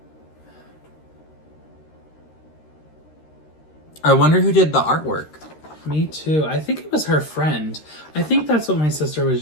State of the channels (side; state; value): right; late; 13 ms